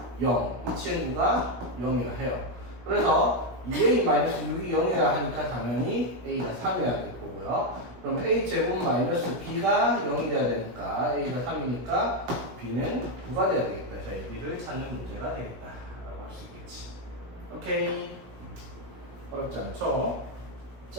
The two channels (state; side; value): late; left; 17 ms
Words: 0, 이 친구가 0이라 해요. 그래서 2a 마이너스 6이 0이어야 하니까 당연히 a가 3이어야 될 거고요. 그럼 a제곱 마이너스 b가 0이 돼야 되니까 a가 3이니까 b는 9가 돼야 되겠다. 자, b를 찾는 문제가 되겠다 라고 할 수 있겠지. 오케이. 어렵지 않죠?